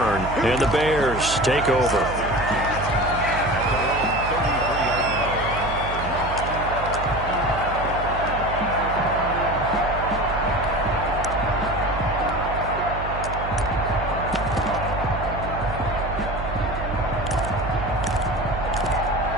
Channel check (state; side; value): noise; right; hum, 7 dB below the sound